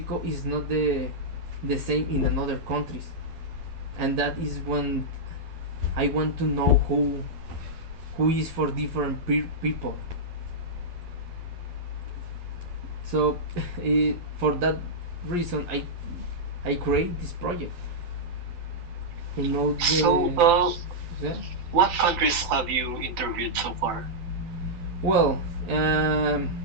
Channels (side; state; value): left; late; 12 ms